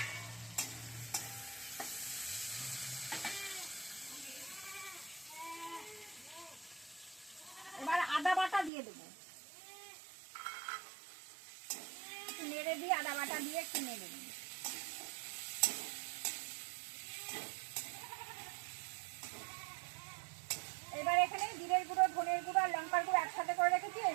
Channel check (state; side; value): drops out; left; at 8.7 s